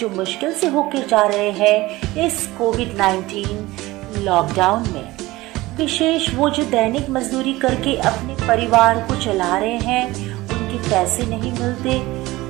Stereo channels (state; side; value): quieter; left; 19.1 dB